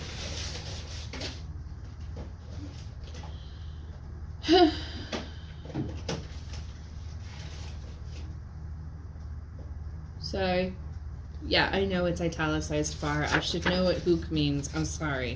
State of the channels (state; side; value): identical; both; correlation 1.00